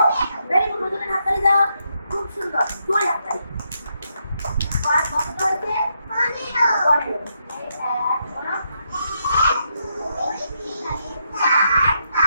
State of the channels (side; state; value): both; inverted; correlation -0.80